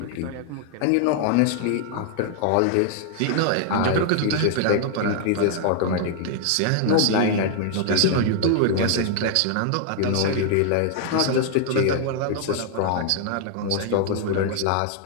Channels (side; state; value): both; different; correlation 0.00